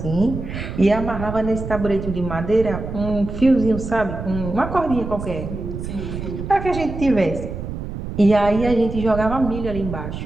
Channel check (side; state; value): right; noise; rumble, 7 dB below the sound